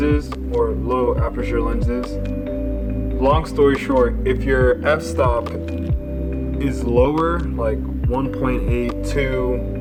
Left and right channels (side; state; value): both; identical; correlation 1.00